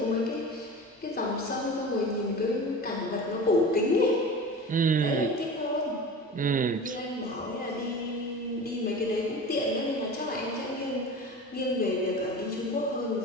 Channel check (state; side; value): normal; both; correlation 0.33